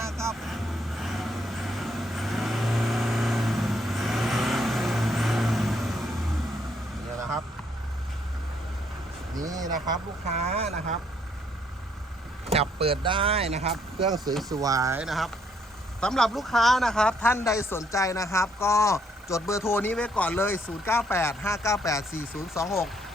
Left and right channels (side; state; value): both; normal; correlation 0.70